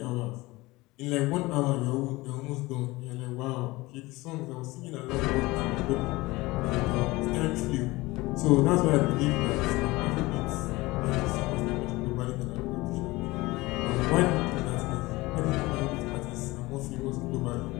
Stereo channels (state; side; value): quieter; right; 21.0 dB